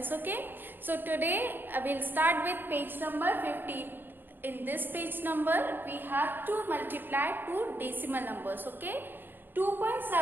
okay? So today I will start with page number 15. In this page number we have to multiply two decimal numbers, okay?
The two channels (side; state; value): left; late; 0.096 ms